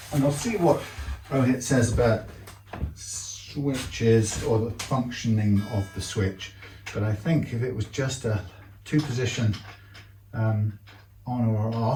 And I'll see what Rohit says about switches or the functioning of the switch. But I think if it was just a two-position on or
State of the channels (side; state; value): both; identical; correlation 1.00